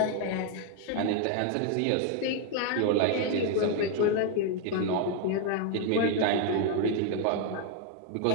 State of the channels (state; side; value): different; both; correlation 0.01